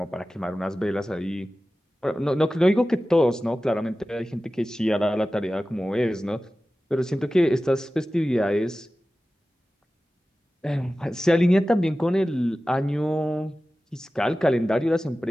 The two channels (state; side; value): normal; both; correlation 0.95